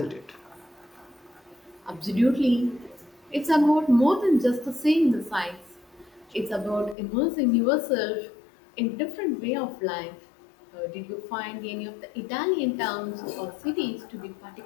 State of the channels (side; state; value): right; drops out; at 7.0 s